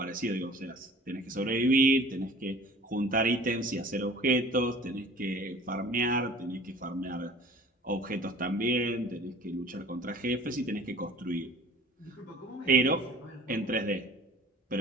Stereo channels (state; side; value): normal; both; correlation 0.46